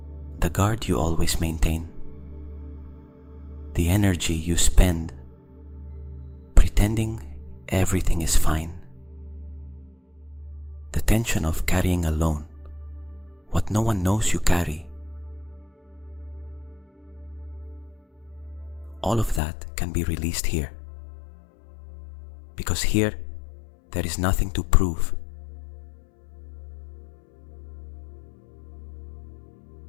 The guard you always maintain, the energy you spend pretending everything is fine, the tension of carrying alone what no one knows you carry. All of that can be released here, because here there is nothing to prove.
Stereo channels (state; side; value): drops out; right; at 19.4 s